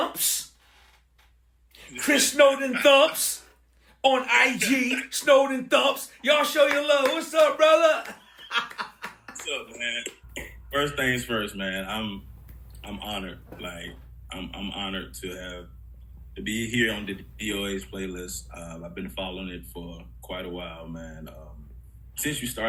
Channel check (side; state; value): both; identical; correlation 1.00